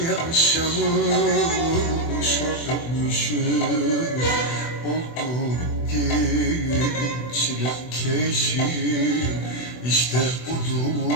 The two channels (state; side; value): late; right; 24 ms